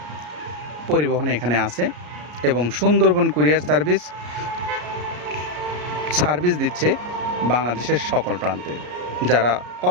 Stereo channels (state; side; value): late; left; 34 ms